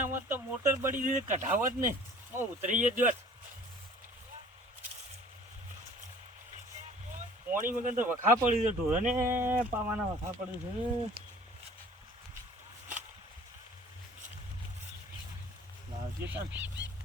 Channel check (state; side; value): normal; both; correlation 0.49